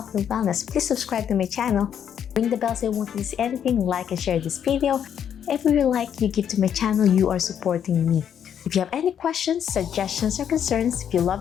and wellness, please subscribe to my channel. Ring the bell so you won't miss anything. Like and share this video. Every like you give to my channel, you are supporting me. If you have any questions, suggestions, or concerns, if you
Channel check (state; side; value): quieter; right; 8.8 dB